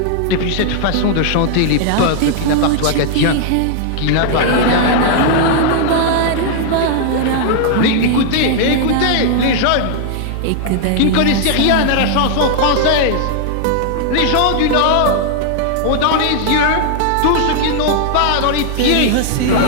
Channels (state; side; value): different; both; correlation -0.01